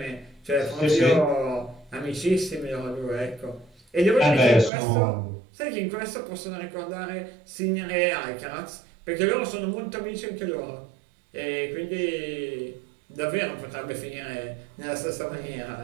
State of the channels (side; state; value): left; drops out; at 4.7 s